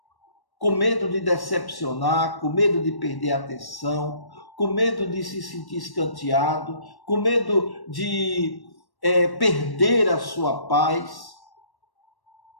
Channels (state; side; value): late; right; 1.1 ms